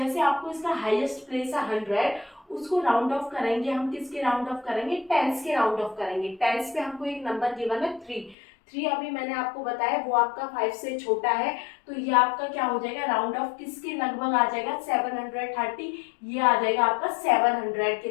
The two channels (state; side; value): drops out; right; at 8.3 s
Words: आपको इसका हाईएस्ट प्लेस है 100, उसको राउंड ऑफ करेंगे हम, किसके राउंड ऑफ करेंगे, टेंस के राउंड ऑफ करेंगे। टेंस पे हमको एक नंबर गिवन है 3 अभी मैंने आपको बताया वो आपका 5 से छोटा है, तो ये आपका क्या हो जाएगा, राउंड ऑफ किसके लगभग आ जाएगा, 730, ये आ जाएगा आपका 700 के